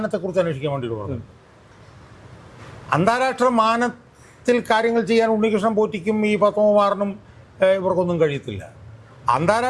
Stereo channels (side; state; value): both; identical; correlation 1.00